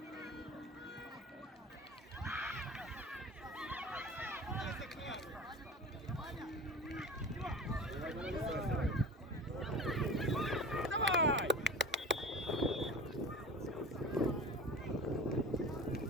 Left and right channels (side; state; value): both; normal; correlation 0.35